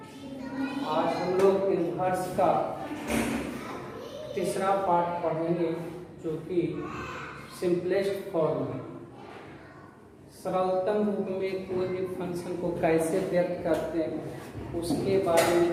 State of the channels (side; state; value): both; identical; correlation 1.00